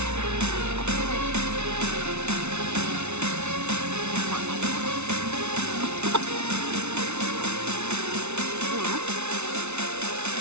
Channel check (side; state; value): left; late; 0.81 ms